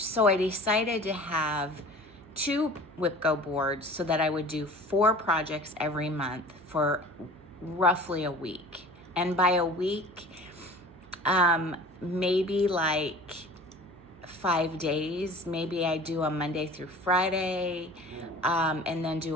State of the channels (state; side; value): noise; right; hum, 24 dB below the sound